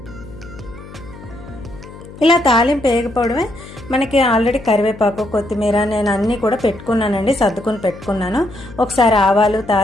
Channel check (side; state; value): left; noise; hum, 17 dB below the sound